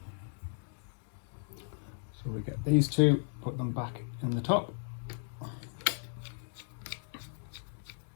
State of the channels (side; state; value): right; silent; digital silence